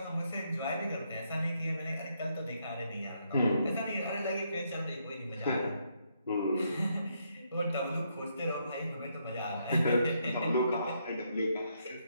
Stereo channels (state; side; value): inverted; both; correlation -0.76